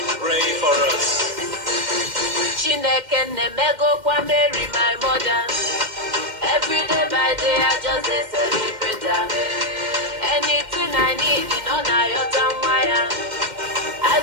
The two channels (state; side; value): late; left; 2.1 ms